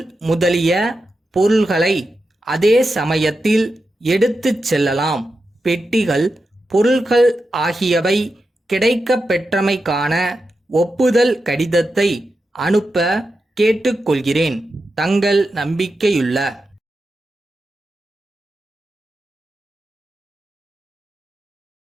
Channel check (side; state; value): both; normal; correlation 0.89